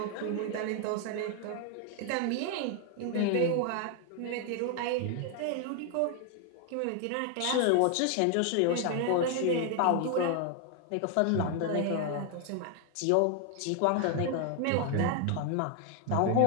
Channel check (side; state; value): both; different; correlation 0.00